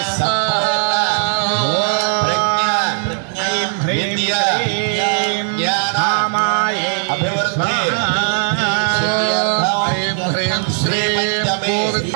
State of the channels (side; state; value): left; silent; 68 dB below the other